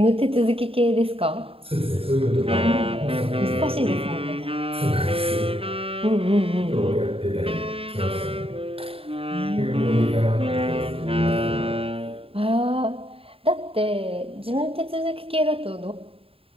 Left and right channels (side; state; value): left; late; 0.27 ms